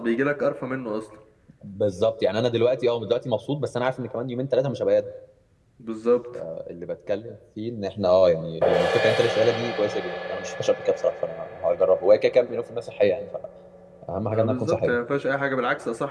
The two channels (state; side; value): identical; both; correlation 1.00